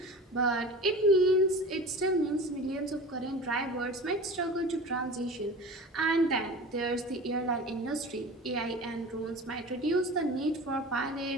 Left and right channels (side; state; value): both; normal; correlation 0.36